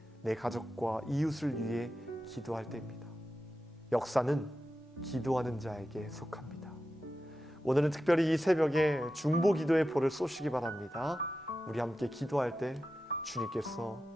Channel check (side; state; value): both; normal; correlation 0.91